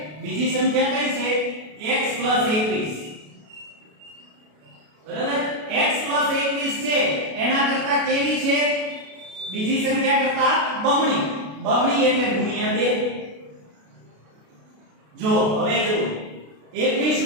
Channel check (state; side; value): late; left; 33 ms